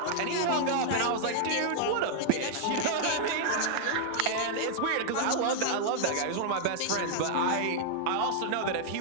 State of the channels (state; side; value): different; both; correlation -0.01